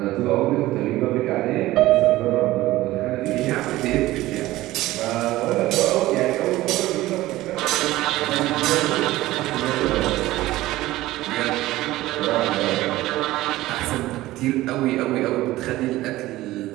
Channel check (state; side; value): quieter; left; 17.0 dB